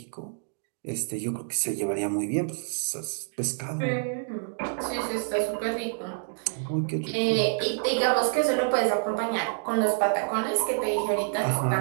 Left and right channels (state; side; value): silent; left; digital silence